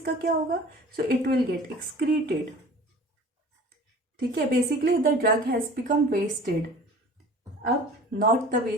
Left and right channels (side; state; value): both; normal; correlation 0.43